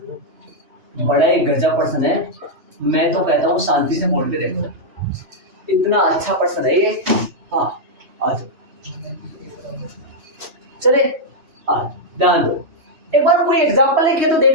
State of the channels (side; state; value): left; late; 3.1 ms